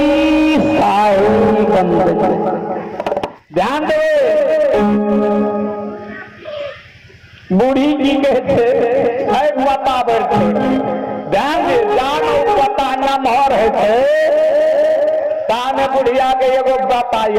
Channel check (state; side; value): identical; both; correlation 1.00